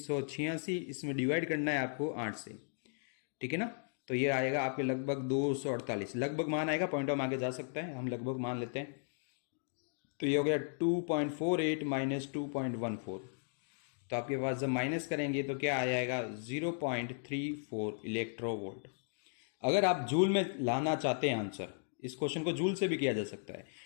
इसमें डिवाइड करना है आपको 8 से। ठीक है ना, तो ये आएगा आपके लगभग 248। लगभग मान आएगा, पॉइंट ऑफ आगे जा सकता है, हम लगभग मान लेते हैं। तो ये हो गया 2.48 माइनस 2.14। तो आपके पास जब माइनस करेंगे तो क्या आ जाएगा 0.34 इलेक्ट्रोवोल्ट। अगर आप जूल में लाना चाहते हैं आंसर, इस क्वेश्चन को जूल से भी किया जा सकता है।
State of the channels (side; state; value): right; silent; digital silence